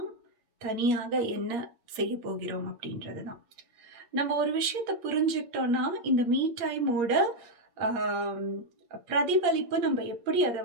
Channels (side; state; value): left; late; 8.5 ms